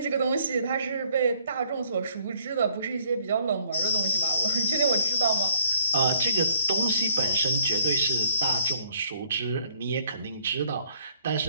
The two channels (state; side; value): inverted; both; correlation -0.63